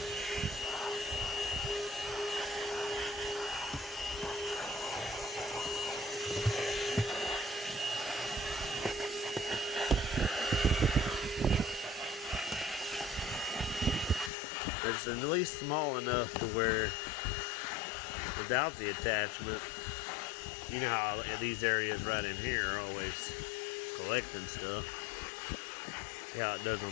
It's at least small enough to where without the attachment, you know how these areas right in here are always collecting stuff. See how it does on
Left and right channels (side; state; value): right; drops out; at 14.3 s